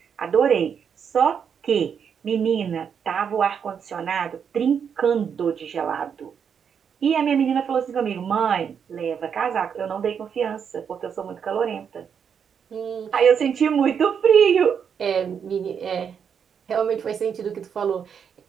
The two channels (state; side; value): quieter; left; 7.3 dB